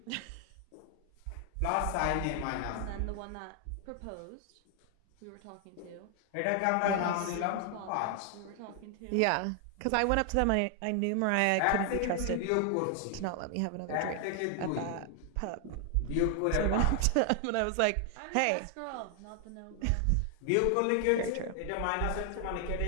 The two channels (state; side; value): different; both; correlation 0.00